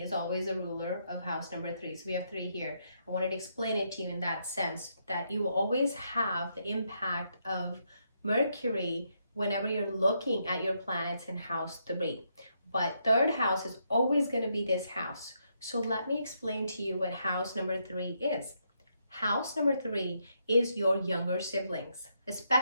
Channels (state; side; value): inverted; both; correlation -0.78